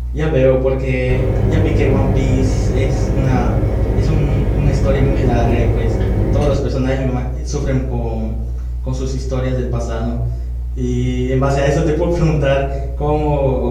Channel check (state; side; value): identical; both; correlation 1.00